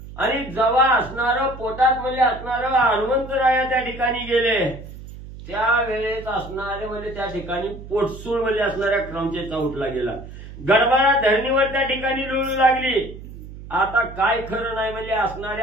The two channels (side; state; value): right; noise; hum, 14 dB below the sound